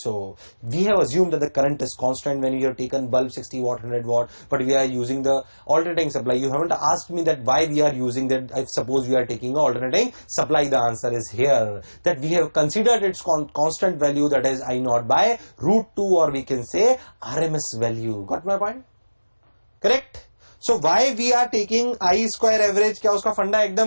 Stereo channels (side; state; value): both; inverted; correlation -1.00